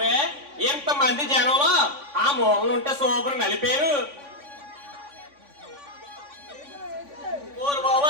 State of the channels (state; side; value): late; left; 3.5 ms